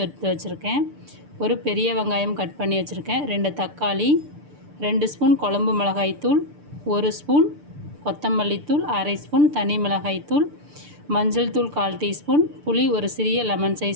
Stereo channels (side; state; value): left; late; 6.8 ms